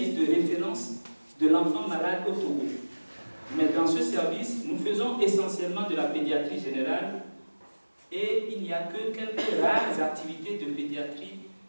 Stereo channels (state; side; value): inverted; both; correlation -1.00